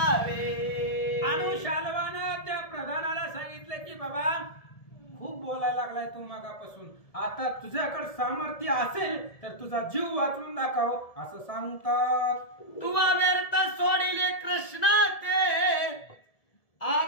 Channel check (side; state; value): right; late; 1.7 ms